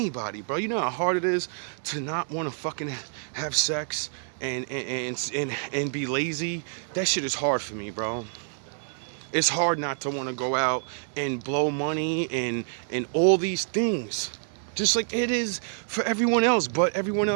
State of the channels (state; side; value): silent; left; digital silence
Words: bro. You know how hard it is to not want to fucking have sex and be lazy? That shit is hard for me, bro. It's hard not to want to go out and blow money and all these things. Just like it is for everyone else, but everyone